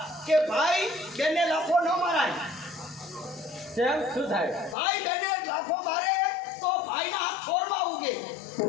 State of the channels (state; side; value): drops out; right; at 4.8 s